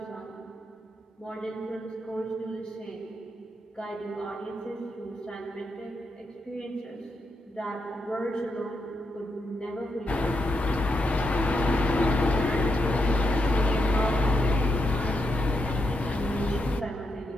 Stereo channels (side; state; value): both; normal; correlation 0.82